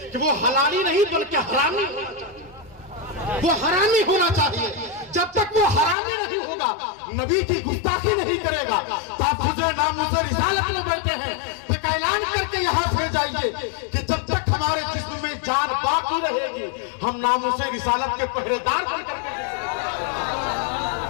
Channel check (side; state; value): right; drops out; at 6.0 s